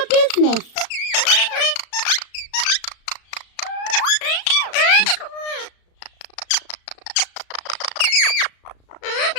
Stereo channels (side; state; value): right; late; 35 ms